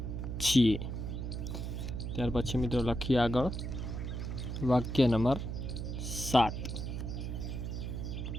છીએ। ત્યાર પછી મિત્રો લખીએ આગળ વાક્ય નંબર 7।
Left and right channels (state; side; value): noise; right; hum, 4 dB below the sound